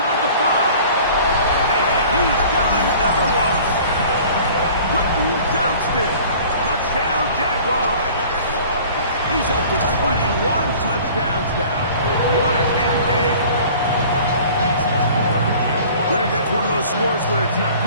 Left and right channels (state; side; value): inverted; both; correlation -0.47